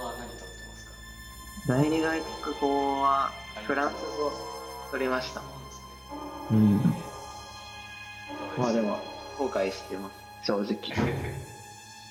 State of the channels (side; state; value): both; identical; correlation 1.00